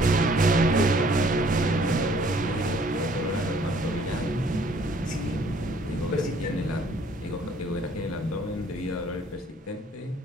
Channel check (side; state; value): both; normal; correlation 0.60